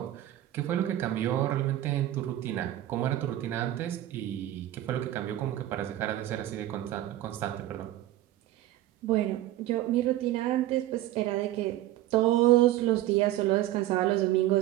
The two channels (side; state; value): left; quieter; 14.3 dB